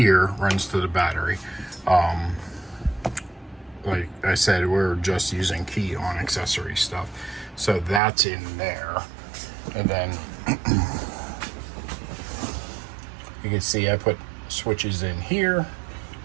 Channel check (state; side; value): drops out; left; at 8.0 s